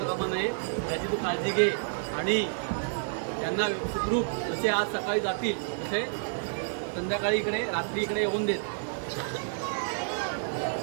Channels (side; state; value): left; silent; digital silence